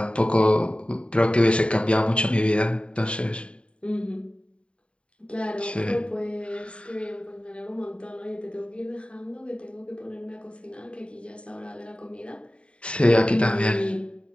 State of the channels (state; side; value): late; right; 0.059 ms